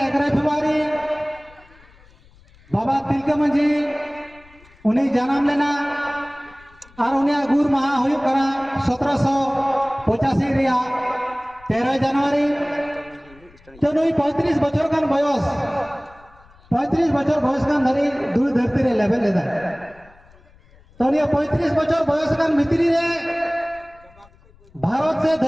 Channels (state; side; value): noise; left; rumble, 27 dB below the sound